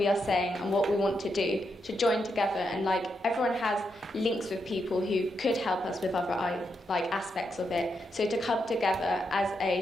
are saying and what we want to do, to join together, and everyone has links with people who could help us with other aspects of it. So to come together as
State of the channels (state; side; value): normal; both; correlation 0.82